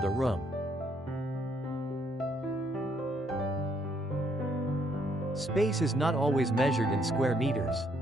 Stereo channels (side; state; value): both; normal; correlation 0.71